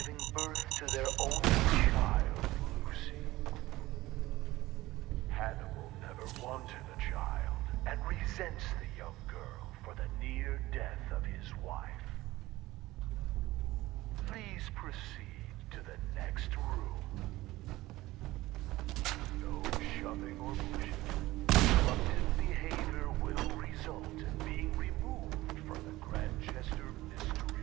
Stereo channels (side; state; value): left; quieter; 17.9 dB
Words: birth to their only child, Lucy. Hannibal never wanted a child and resents the young girl for the near death of his wife. Please proceed to the next room. No shoving or pushing. Disruptive behavior will result in being removed from the Grandchester